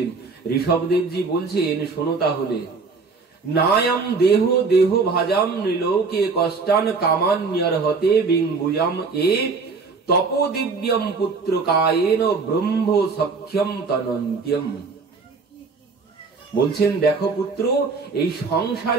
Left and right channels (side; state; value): left; quieter; 4.5 dB